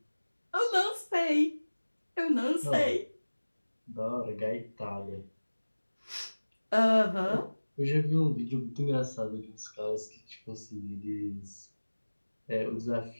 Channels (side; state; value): both; inverted; correlation -1.00